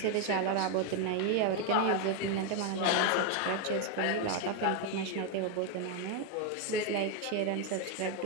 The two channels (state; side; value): different; both; correlation 0.01